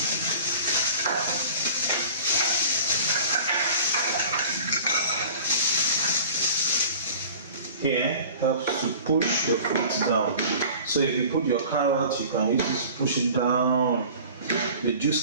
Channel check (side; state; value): both; inverted; correlation -0.42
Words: here helps to push the fruit down. So if you put your carrot, you can use this to push it down. The